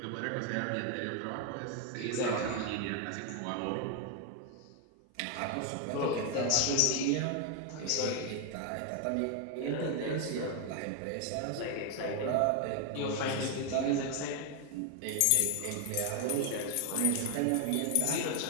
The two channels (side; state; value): both; different; correlation 0.01